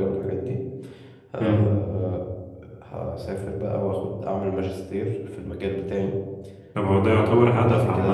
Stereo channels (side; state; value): both; identical; correlation 1.00